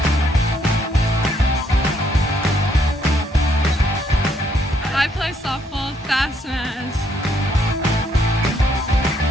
I play softball, Fast Maz.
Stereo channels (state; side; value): normal; both; correlation 0.70